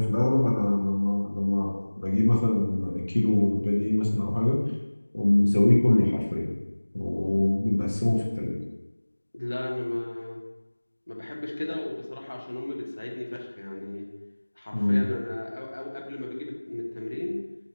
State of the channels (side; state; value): both; inverted; correlation -1.00